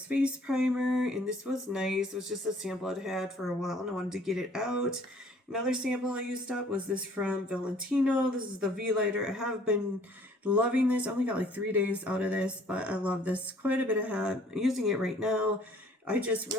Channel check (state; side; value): normal; both; correlation 0.56